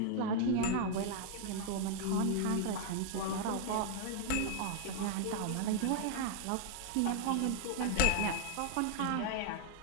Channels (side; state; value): both; different; correlation 0.00